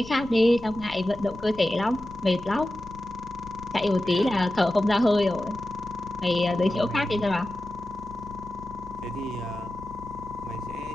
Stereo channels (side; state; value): left; noise; rumble, 18 dB below the sound